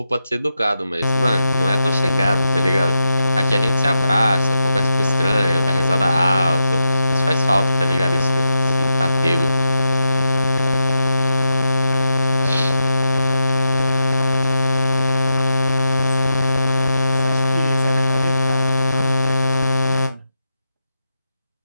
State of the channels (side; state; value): both; inverted; correlation -0.87